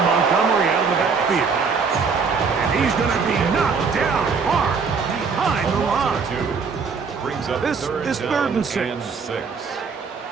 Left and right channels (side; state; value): left; quieter; 5.3 dB